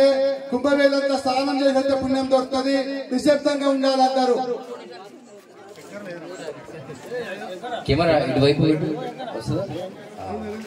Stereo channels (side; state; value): both; identical; correlation 1.00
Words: కుంభమేళంతా స్నానం చేసే పుణ్యం దొరుకుతుంది. నిశ్శబ్దంగా ఉండాలంటారు. కెమెరా ఇటువైపు